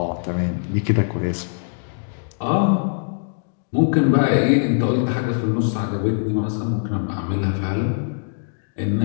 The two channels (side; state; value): right; silent; digital silence